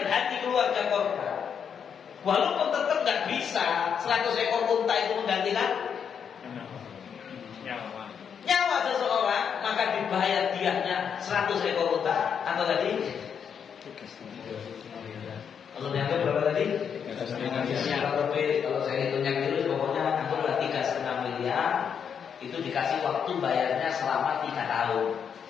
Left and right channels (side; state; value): right; quieter; 7.4 dB